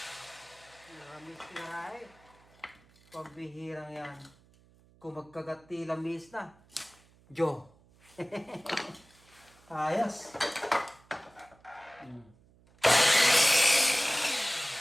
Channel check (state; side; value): noise; right; hum, 29 dB below the sound